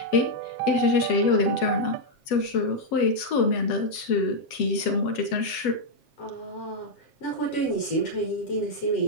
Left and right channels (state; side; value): late; right; 7.4 ms